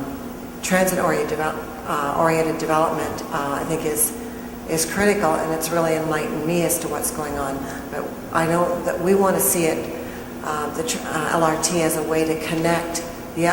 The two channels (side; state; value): both; identical; correlation 1.00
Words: transit-oriented development, I think is critical, and it's really enlightened me as to what's going on. But I know that we want to see it, the LRT, as a way to connect the